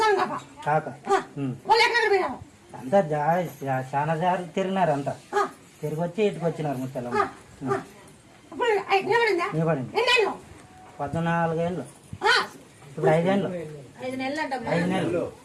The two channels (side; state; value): both; identical; correlation 1.00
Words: కాక అంతా చాలా జారి తిరిగినారు అంతా తిరిగి వచ్చి ఇటుకు వచ్చినారు ముచ్చలమ్మ నీ పడింది 14 ఏళ్ళు ఇప్పుడు 5 ఏళ్ళు